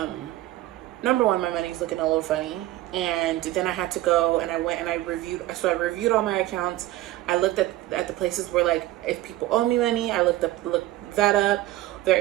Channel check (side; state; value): left; quieter; 15.9 dB